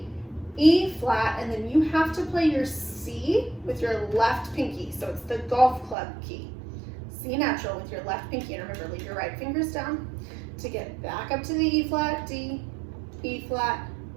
E flat, and then you have to play your C with your left pinky. So it's the golf club key. C natural with your left pinky, and remember, leave your right fingers down to get back up to the E flat, D, E flat,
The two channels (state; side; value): drops out; left; at 6.0 s